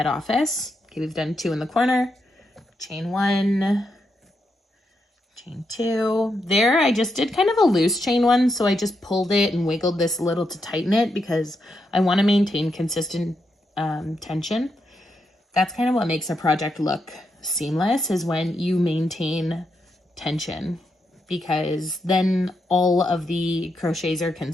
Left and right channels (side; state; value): both; normal; correlation 0.83